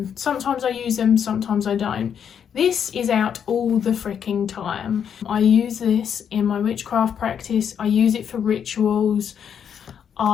Sometimes I use them, sometimes I don't. This is out all the freaking time. I use this in my witchcraft practice. I use it for rituals.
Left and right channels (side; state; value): right; quieter; 8.1 dB